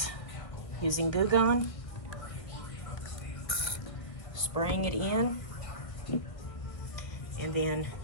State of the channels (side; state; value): right; late; 1.5 ms